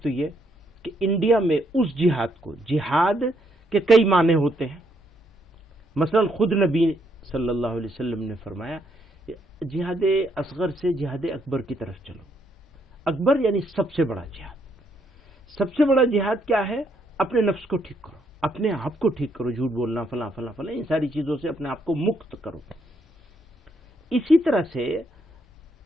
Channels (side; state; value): both; normal; correlation 0.73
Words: تو یہ کہ انڈیا میں اس جہاد کو، جہاد کے کئی معنی ہوتے ہیں. مثلا خود نبی صلی اللہ علیہ وسلم نے فرمایا جہاد اصغر سے جہاد اکبر کی طرف چلو. اکبر یعنی سب سے بڑا جہاد. سب سے بڑا جہاد کیا ہے؟ اپنے نفس کو ٹھیک کرو، اپنے آپ کو ٹھیک کرو، جھوٹ بولنا، فلاں فلاں فلاں، ان ساری چیزوں سے اپنے آپ کو مکت کرو. اسی طرح سے